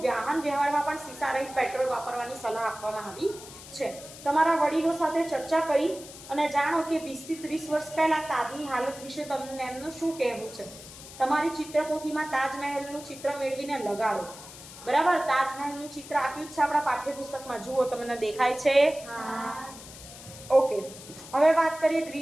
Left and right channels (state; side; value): noise; left; hiss, 16 dB below the sound